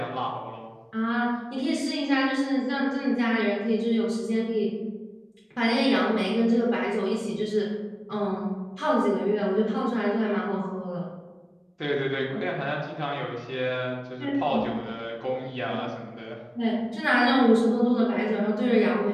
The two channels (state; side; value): identical; both; correlation 1.00